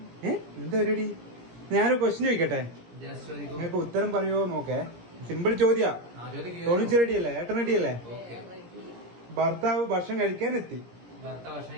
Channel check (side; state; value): left; late; 17 ms